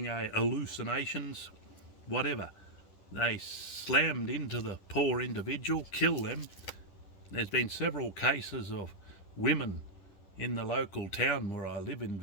hallucinations, whatever. They slammed into the poor individual, killed them. There's been several cases of women in the local town where I live in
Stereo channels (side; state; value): right; late; 10 ms